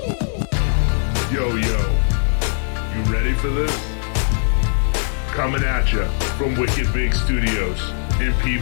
Yo, you ready for this? Coming at you from Wicked Big Studios in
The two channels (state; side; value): silent; right; 66 dB below the other